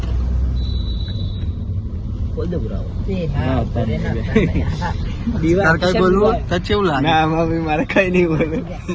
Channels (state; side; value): identical; both; correlation 1.00